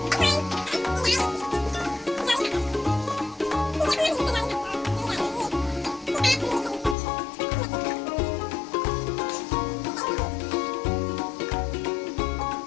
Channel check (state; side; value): drops out; right; at 7.0 s